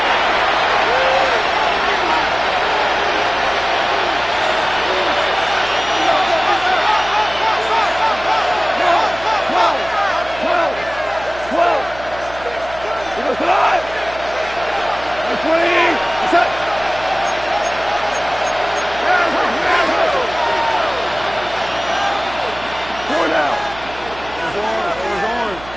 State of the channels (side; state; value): right; noise; hum, 17 dB below the sound